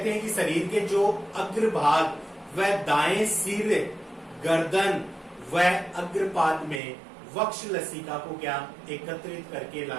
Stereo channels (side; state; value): left; drops out; at 6.8 s